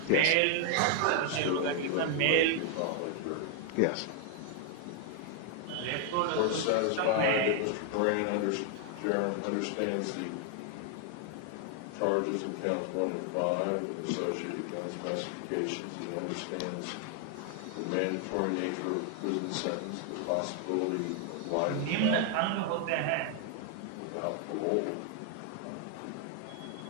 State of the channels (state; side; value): different; both; correlation 0.00